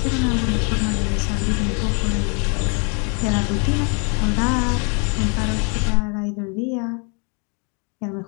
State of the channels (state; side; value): quieter; right; 35.9 dB